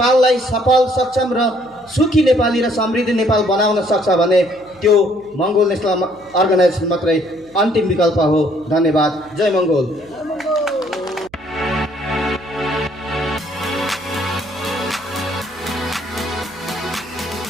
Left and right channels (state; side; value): noise; right; hum, 29 dB below the sound